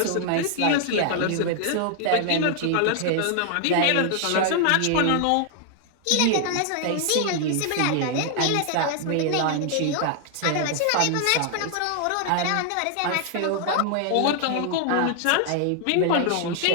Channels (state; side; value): different; both; correlation 0.00